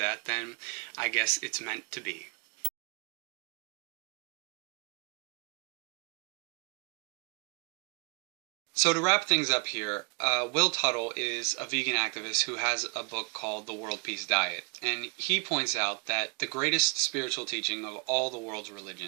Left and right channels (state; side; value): quieter; left; 33.9 dB